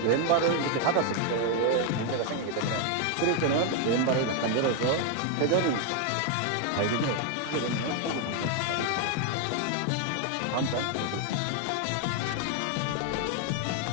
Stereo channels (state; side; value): different; both; correlation 0.01